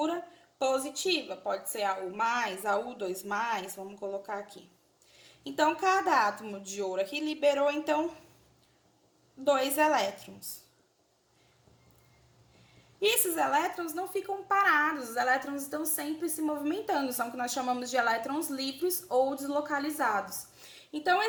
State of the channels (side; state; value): both; identical; correlation 1.00